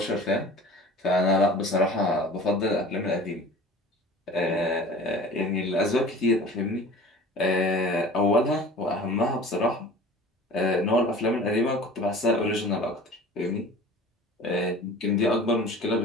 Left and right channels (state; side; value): normal; both; correlation 0.42